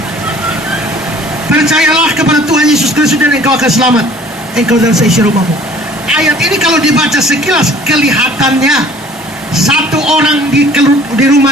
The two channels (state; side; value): normal; both; correlation 0.51